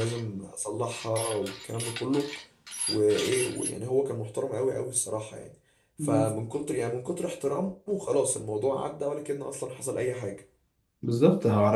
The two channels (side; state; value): both; identical; correlation 1.00